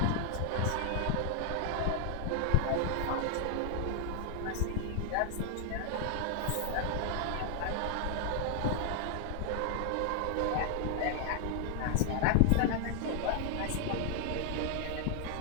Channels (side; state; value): both; different; correlation 0.00